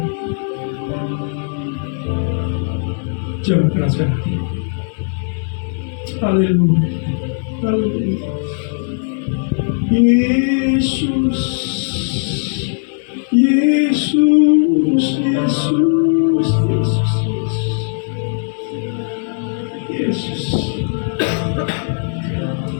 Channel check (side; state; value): right; silent; 67 dB below the other